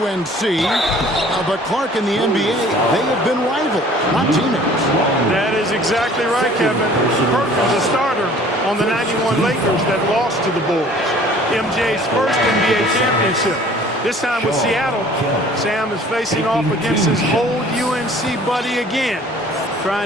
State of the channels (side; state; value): both; normal; correlation 0.51